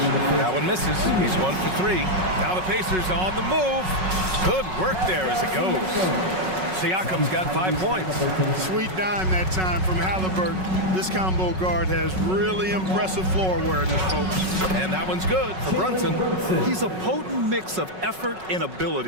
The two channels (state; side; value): late; left; 5.4 ms